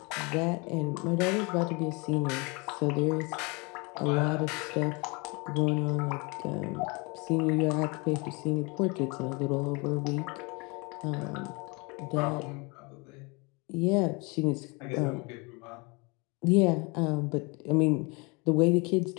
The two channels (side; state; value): right; quieter; 28.9 dB